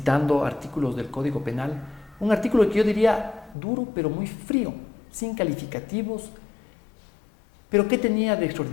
artículos del Código Penal, un artículo que yo diría duro pero muy frío, sin calificativos. Pero ¿qué tenía de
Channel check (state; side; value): drops out; right; at 3.6 s